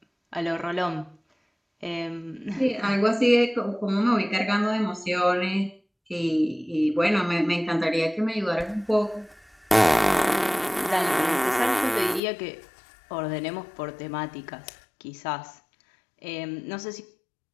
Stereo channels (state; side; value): drops out; right; at 12.2 s